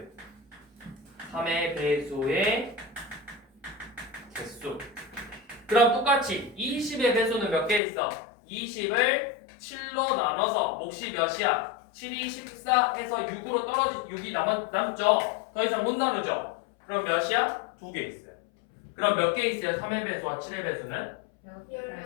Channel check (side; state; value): right; drops out; at 7.8 s